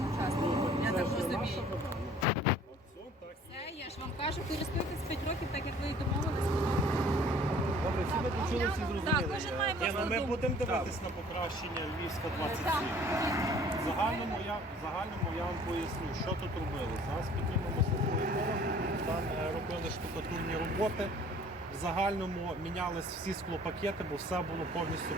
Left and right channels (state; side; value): normal; both; correlation 0.53